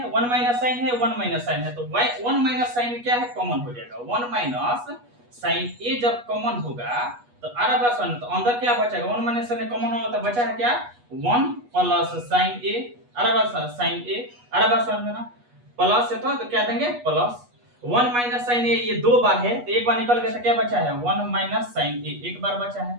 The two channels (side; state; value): left; late; 8.3 ms